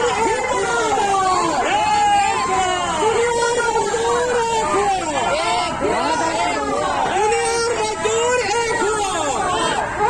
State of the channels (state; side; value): identical; both; correlation 1.00